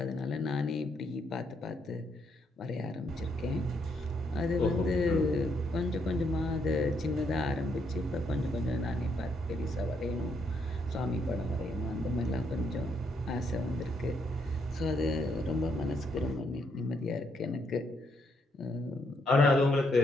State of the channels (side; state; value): both; normal; correlation 0.75